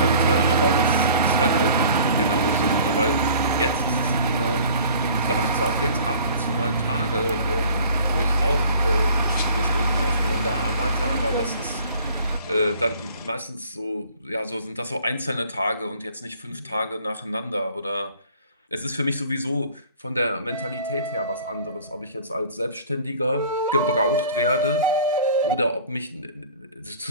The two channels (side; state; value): both; inverted; correlation -0.49